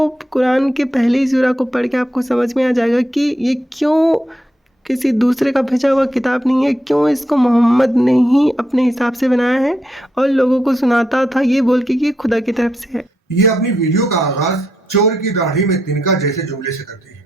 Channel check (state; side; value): normal; both; correlation 0.81